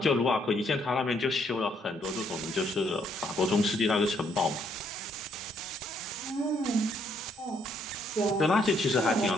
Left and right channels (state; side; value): normal; both; correlation 0.71